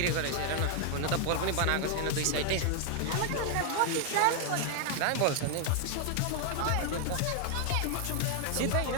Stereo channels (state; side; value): different; both; correlation 0.00